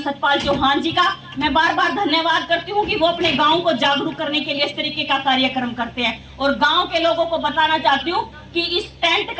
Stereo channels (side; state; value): both; identical; correlation 1.00